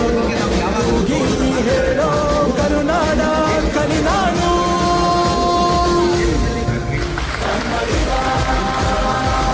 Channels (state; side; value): identical; both; correlation 1.00